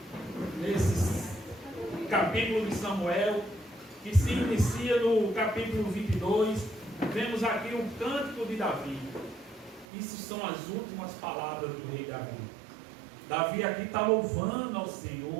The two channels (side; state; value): left; drops out; at 9.9 s